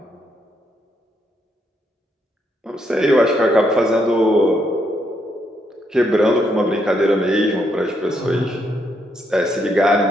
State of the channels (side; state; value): both; normal; correlation 0.76